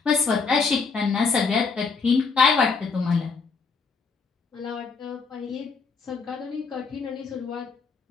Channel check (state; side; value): quieter; right; 4.9 dB